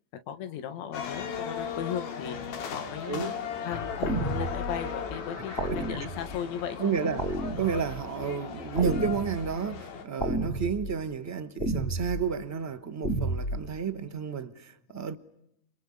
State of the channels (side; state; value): right; late; 8.9 ms